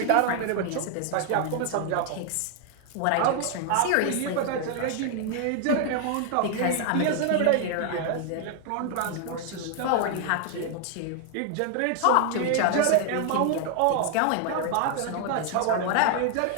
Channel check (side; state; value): both; different; correlation 0.00